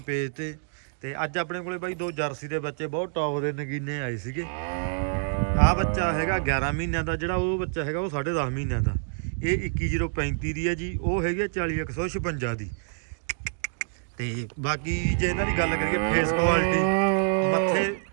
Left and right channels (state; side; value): silent; left; digital silence